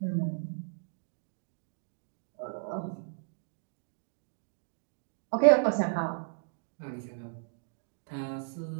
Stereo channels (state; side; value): silent; left; digital silence